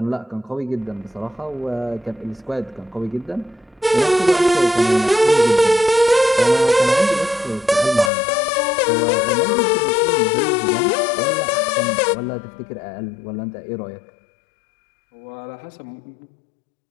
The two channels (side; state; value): right; drops out; at 8.1 s